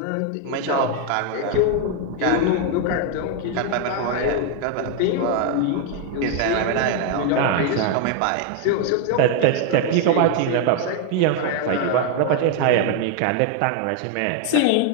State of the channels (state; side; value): different; both; correlation 0.01